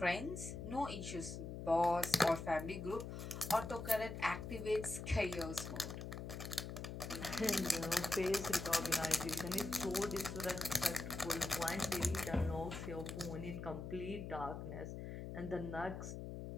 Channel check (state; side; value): noise; left; hum, 7 dB below the sound